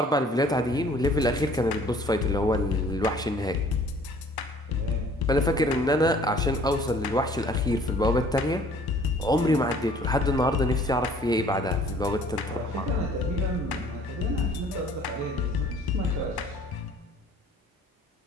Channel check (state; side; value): normal; both; correlation 0.55